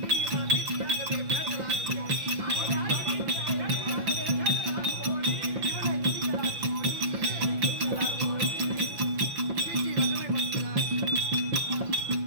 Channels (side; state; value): left; late; 5.8 ms